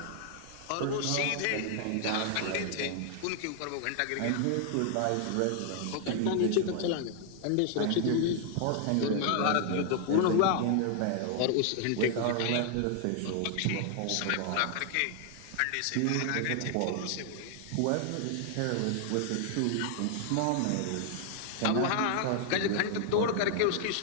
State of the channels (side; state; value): both; different; correlation 0.00